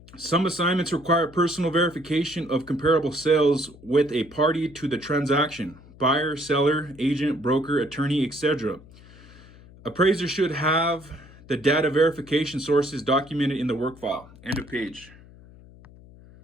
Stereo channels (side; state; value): left; noise; hum, 22 dB below the sound